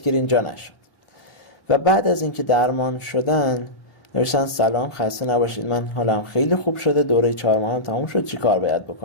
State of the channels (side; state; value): right; late; 1.4 ms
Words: جا نشد. و بعد از اینکه درمان شدن نوشتن سلام، خسته نباشید، من حالم خیلی خوب شده، دوره 4 ماه هم تموم شد، چی کار باید